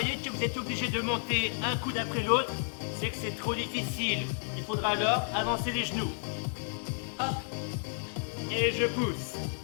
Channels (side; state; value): right; silent; digital silence